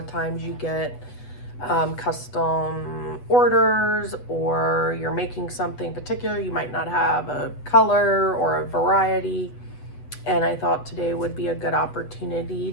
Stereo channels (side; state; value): right; late; 8.1 ms